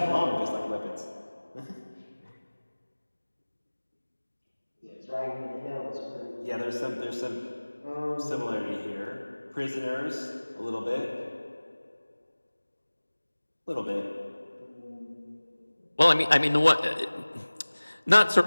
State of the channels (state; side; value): inverted; both; correlation -1.00